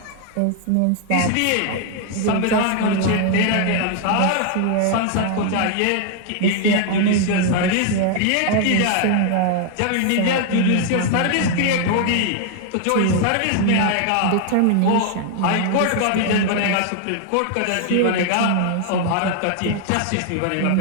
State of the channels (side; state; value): both; different; correlation 0.00